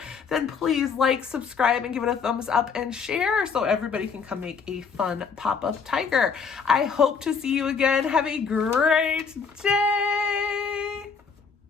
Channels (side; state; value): right; quieter; 5.8 dB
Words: then please like, subscribe, and give it a thumbs up and share so everybody can come make a fun pop-up tiger. I hope to see you again. Have a great day.